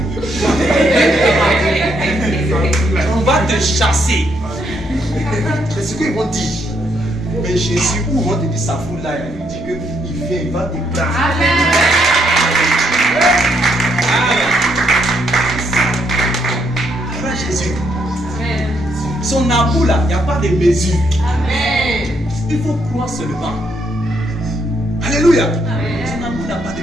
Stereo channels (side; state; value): both; normal; correlation 0.74